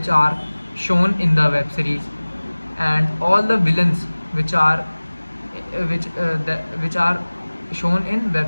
are shown in the web series, and all the villains which are which are shown in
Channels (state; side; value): inverted; both; correlation -1.00